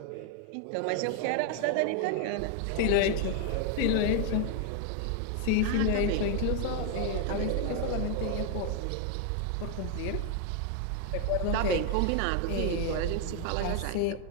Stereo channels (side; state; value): both; different; correlation 0.00